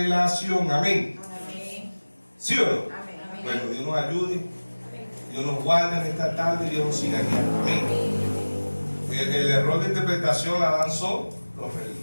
Amén. Amén. ¿Sí o no? Amén. Bueno, Dios nos ayude, Dios nos guarde en esta tarde, Dios nos siga guiando. Amén. El error de interpretación la dan son los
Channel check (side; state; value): both; inverted; correlation -1.00